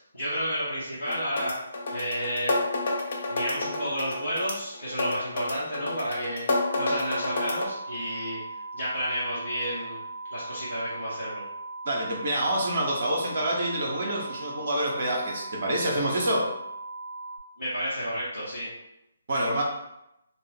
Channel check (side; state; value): both; inverted; correlation -0.75